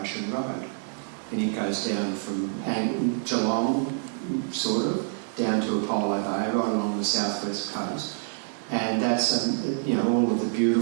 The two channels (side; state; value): left; silent; 60 dB below the other